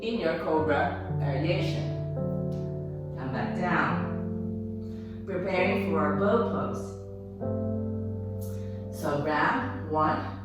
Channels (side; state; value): both; identical; correlation 1.00